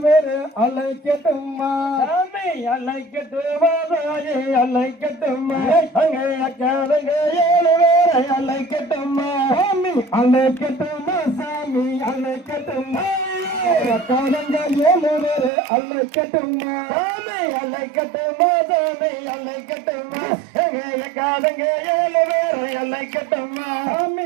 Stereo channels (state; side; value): drops out; left; at 15.5 s